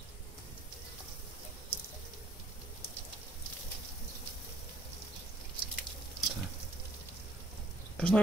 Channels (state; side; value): normal; both; correlation 0.65